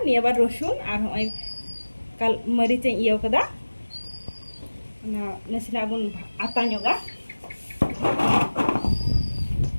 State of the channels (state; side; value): inverted; both; correlation -1.00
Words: ni bar rosun ar hoi kal maric yang iyo kada na nasina bun ata nyoga